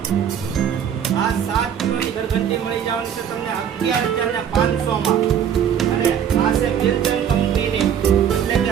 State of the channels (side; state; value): left; quieter; 8.7 dB